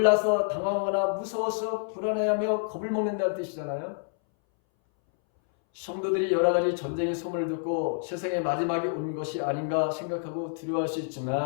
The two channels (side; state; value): right; silent; 59 dB below the other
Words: 당황하거나 무서워서 불안해하며 겁을 먹는다는 뜻이잖아요. 성도들이 여러 가지 전쟁의 소문을 듣고 세상의 마지막이 온 것이 아닌가 생각하고 두려워할 수